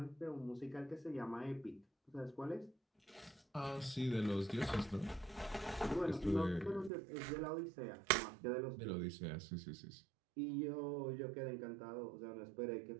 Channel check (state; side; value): drops out; left; at 6.9 s